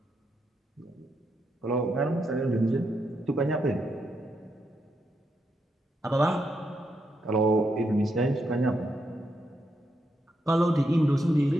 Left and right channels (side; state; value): both; normal; correlation 0.81